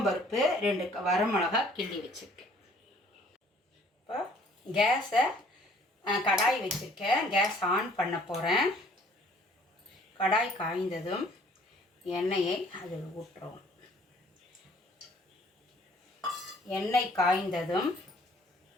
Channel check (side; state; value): both; normal; correlation 0.57